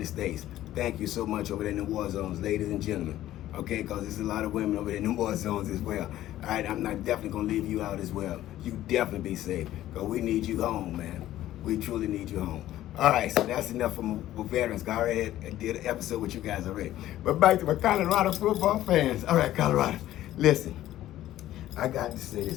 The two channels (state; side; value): quieter; right; 13.8 dB